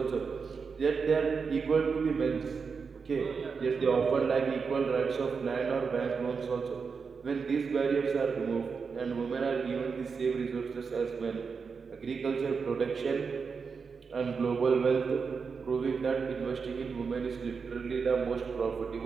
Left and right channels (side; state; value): left; quieter; 5.4 dB